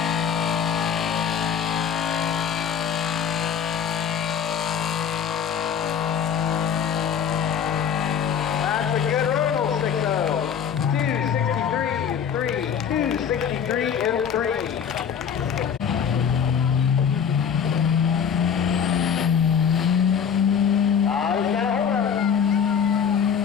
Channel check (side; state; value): right; quieter; 7.6 dB